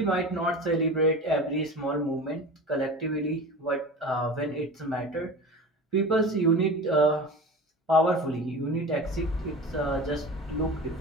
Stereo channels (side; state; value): both; normal; correlation 0.33